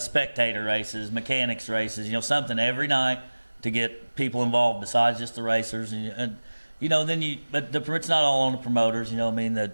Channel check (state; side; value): inverted; both; correlation -1.00